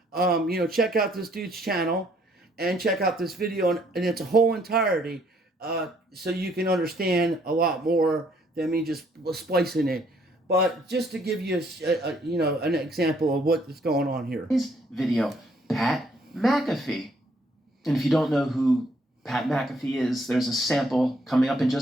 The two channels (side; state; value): both; normal; correlation 0.66